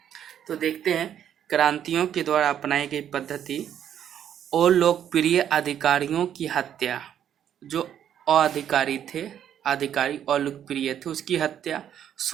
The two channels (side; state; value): left; quieter; 9.8 dB